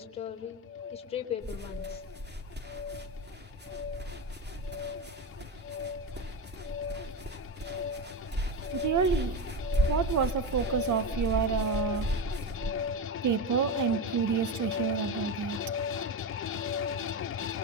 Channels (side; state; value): both; normal; correlation 0.17